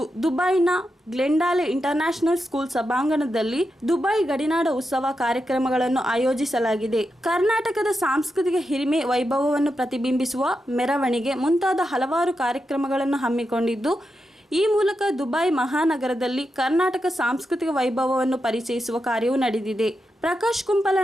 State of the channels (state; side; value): normal; both; correlation 0.87